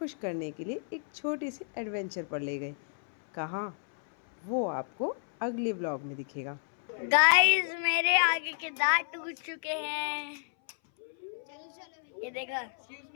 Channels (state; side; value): silent; right; 57 dB below the other